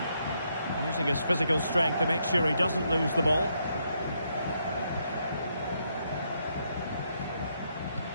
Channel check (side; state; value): both; inverted; correlation -0.76